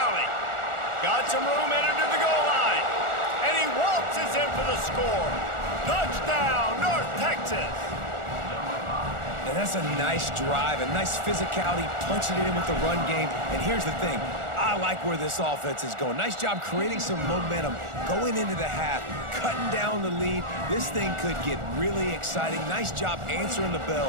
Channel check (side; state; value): left; late; 1.4 ms